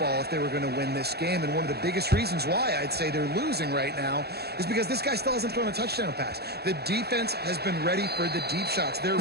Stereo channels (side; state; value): left; late; 0.47 ms